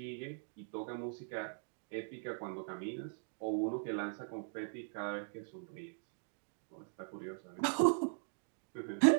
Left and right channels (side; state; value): left; silent; digital silence